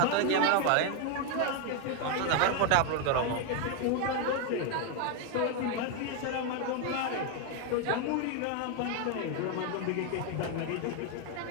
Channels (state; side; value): different; both; correlation 0.01